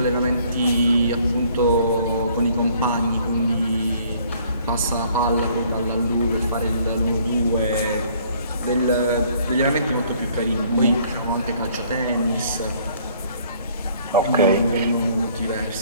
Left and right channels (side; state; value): both; inverted; correlation -0.60